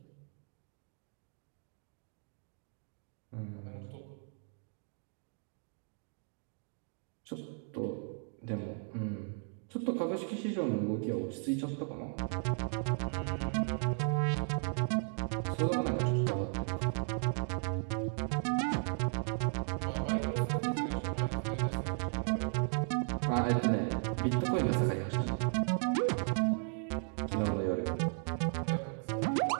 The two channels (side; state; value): left; silent; 54 dB below the other